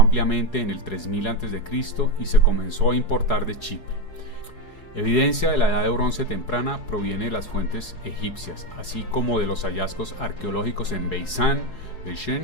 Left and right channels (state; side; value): late; right; 4.8 ms